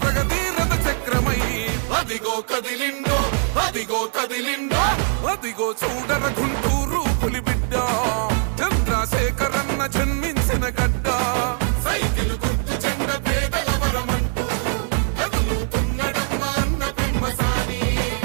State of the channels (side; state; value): left; silent; 64 dB below the other